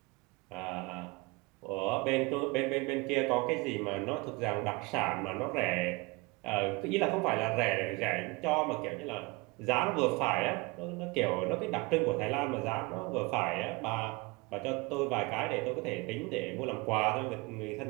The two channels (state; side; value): quieter; left; 25.0 dB